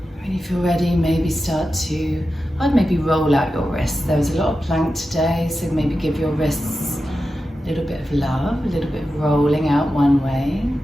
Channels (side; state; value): both; normal; correlation 0.92